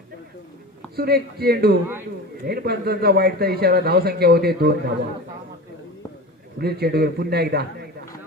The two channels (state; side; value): normal; both; correlation 0.31